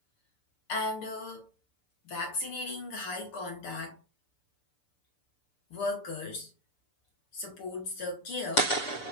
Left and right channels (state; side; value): late; right; 6.8 ms